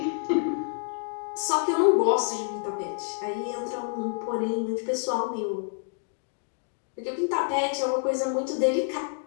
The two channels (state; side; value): silent; right; digital silence